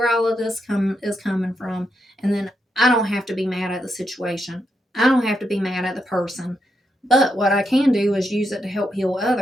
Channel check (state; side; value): normal; both; correlation 0.82